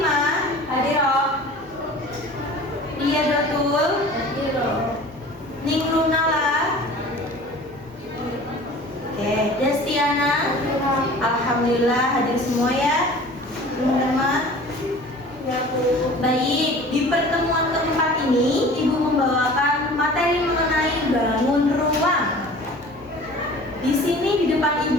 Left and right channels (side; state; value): both; normal; correlation 0.43